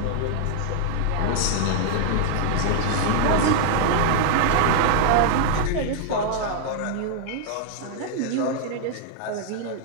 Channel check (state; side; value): different; both; correlation 0.00